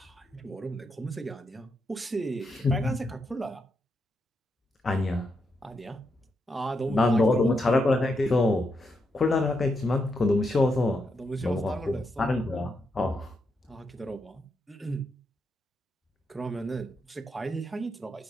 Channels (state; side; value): normal; both; correlation 0.82